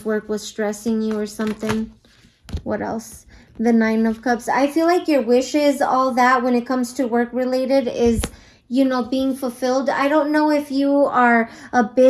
work was stressing you or something. What else? The Nine of Cups. I feel like your wishes, all that, when it comes to work related is, you know, being fulfilled. I don't know if you are a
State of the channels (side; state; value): both; identical; correlation 1.00